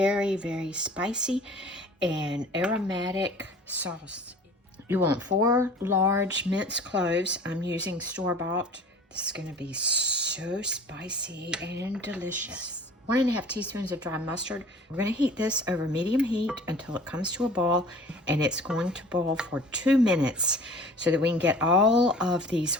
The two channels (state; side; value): normal; both; correlation 0.45